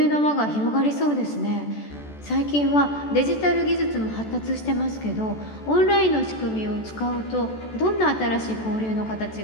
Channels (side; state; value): right; late; 14 ms